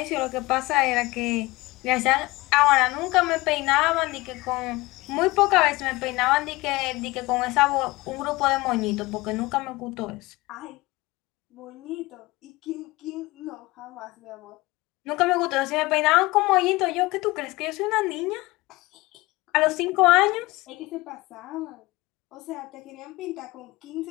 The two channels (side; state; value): right; quieter; 21.4 dB